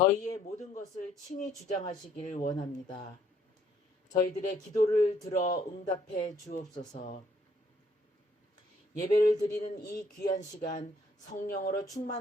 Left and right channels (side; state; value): both; normal; correlation 0.65